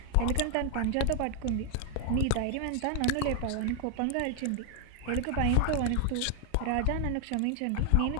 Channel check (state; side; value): different; both; correlation 0.00